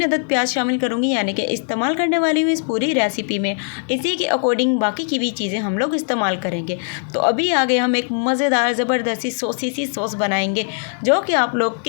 अदद प्याज शामिल करूँगी, यानी कि इस्तेमाल करने वाली हूँ इस पूरी रेसिपी में। इसी के अकॉर्डिंग बाकी की भी चीज़ें हम लोग इस्तेमाल करेंगे। तो अभी आगे हम एक मज़ेदार ज़बरदस्ती सॉसी सी सॉस बनाएंगे, जो कि आप लोग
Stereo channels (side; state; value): right; silent; 66 dB below the other